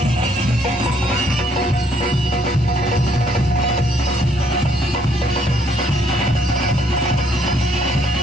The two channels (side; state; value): both; normal; correlation 0.67